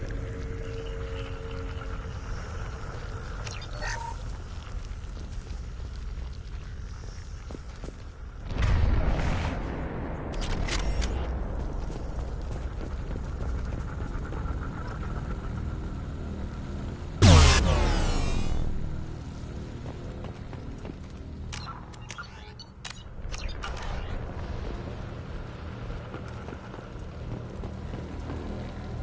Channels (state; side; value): identical; both; correlation 1.00